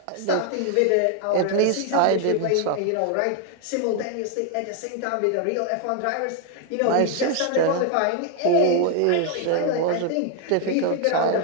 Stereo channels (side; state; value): both; different; correlation 0.00